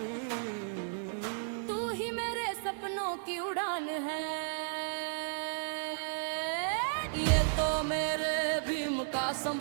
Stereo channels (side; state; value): left; silent; 55 dB below the other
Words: तू ही मेरे सपनों की उड़ान है। ये तो मेरे भीम का